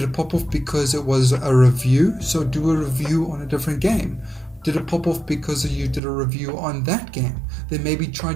it pop off because it was a review? So do a review on a different game. Did it pop off because you did a review on that game? Then maybe try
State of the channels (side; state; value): left; drops out; at 6.0 s